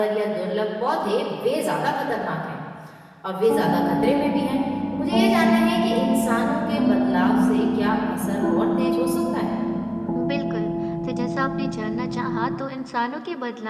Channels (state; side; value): identical; both; correlation 1.00